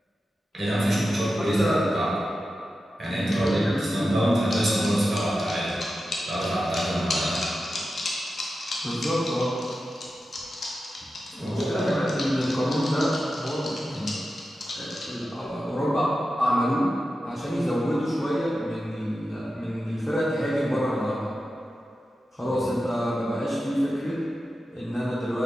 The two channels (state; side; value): normal; both; correlation 0.91